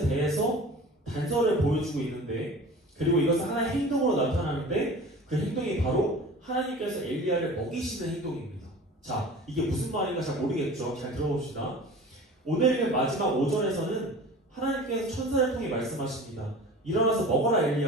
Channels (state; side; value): normal; both; correlation 0.39